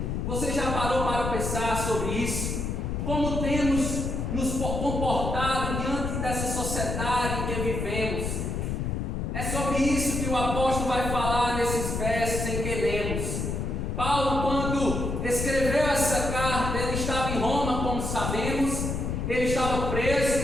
Você já parou para pensar sobre isso? Como temos nos comportado diante dessa sociedade em que vivemos? É sobre isso que o apóstolo vai falar nesses versos em que lemos. Paulo, quando escreveu essa carta, ele estava em Roma, como sabemos, ele estava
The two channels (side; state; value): left; noise; rumble, 2 dB below the sound